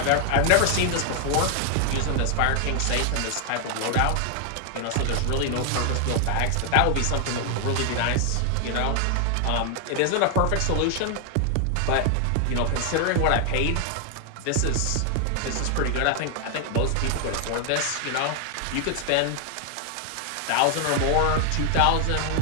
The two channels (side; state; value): both; different; correlation 0.00